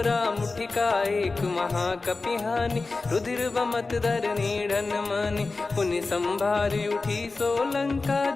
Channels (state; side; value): quieter; right; 3.7 dB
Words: मुठिका एक महाकपिहानी रुधिर बमत धर नीढ़न मानी पुनि संभारी उठी सो लंका